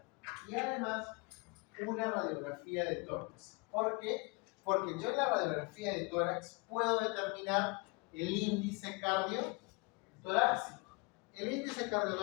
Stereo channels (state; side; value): quieter; right; 29.1 dB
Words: y además una radiografía de tórax. ¿Por qué? Porque yo en la radiografía de tórax puedo determinar el índice cardiotorácico. El índice